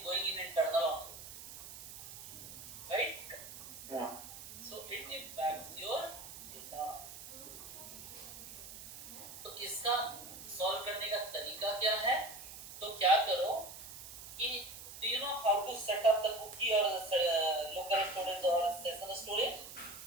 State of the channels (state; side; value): noise; right; hiss, 12 dB below the sound